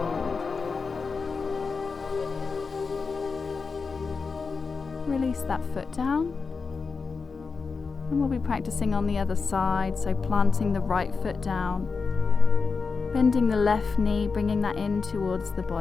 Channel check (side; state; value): right; quieter; 4.8 dB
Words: Release that foot down, and we'll be practicing on the other side, so planting the right foot down, bending the left knee, bringing that in towards the